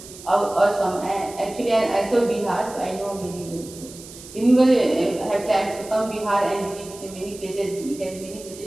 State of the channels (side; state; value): right; noise; hiss, 17 dB below the sound